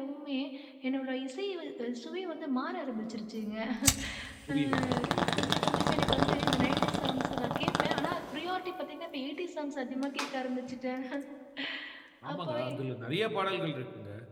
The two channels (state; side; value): identical; both; correlation 1.00